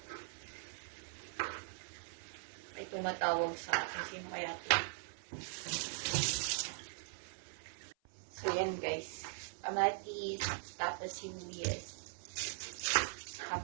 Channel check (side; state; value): left; silent; 51 dB below the other